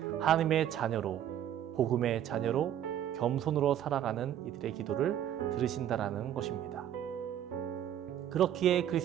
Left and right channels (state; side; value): quieter; left; 10.7 dB